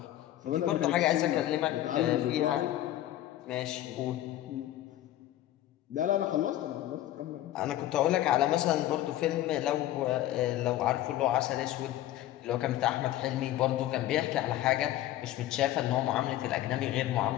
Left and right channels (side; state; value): right; quieter; 13.7 dB